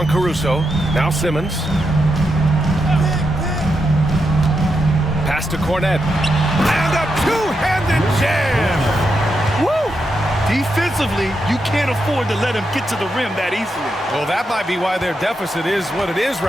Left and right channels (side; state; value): both; normal; correlation 0.84